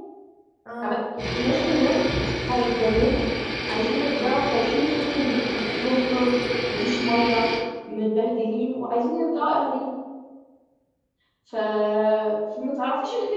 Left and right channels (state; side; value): identical; both; correlation 1.00